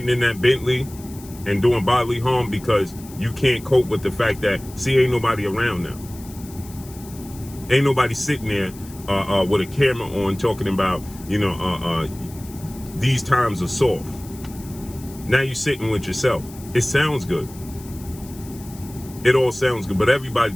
in that Bentley and doing bodily harm because you can't cope with the fact that, see, ain't nobody around now. Ain't nobody sitting there with a camera on talking about, you know, these times are soft. Now you're sitting with yourself. It sounds good. It all sounds good, but everybody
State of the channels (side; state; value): left; noise; hiss, 19 dB below the sound